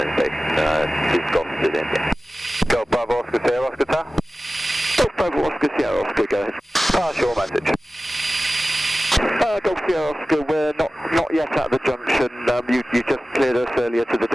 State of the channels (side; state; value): both; normal; correlation 0.96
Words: Station. This Golf to the India. Golf Bravo Oscar Sierra Oscar Tower. Golf Bravo Oscar Sierra Oscar, go ahead. Pass your message. Golf Sierra Oscar, we're not yet at the junction. You just cleared us earlier to the